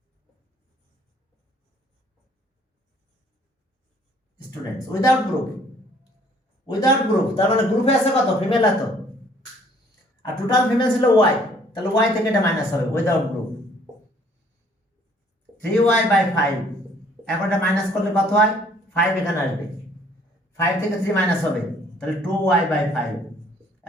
students without group, তার মানে গ্রুপে আছে কত? ফিমেল এত, আর টোটাল ফিমেল ছিল y, তাহলে y থেকে এটা মাইনাস হবে উইদাউট গ্রুপ, 3y by 5, এখন এটা মাইনাস করলে কত হয়? 5 এখানে আসবে, 5 থেকে 3 মাইনাস হবে, তাহলে 2y by 5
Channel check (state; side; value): normal; both; correlation 0.60